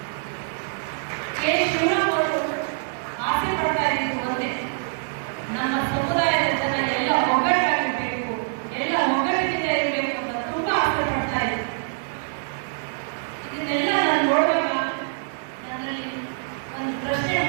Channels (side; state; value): left; silent; digital silence